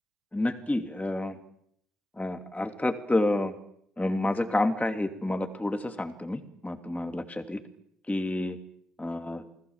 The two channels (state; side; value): normal; both; correlation 0.94